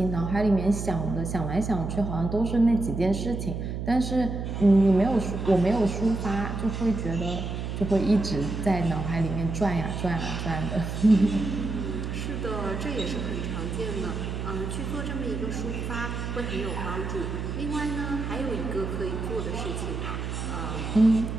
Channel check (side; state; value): right; noise; hum, 4 dB below the sound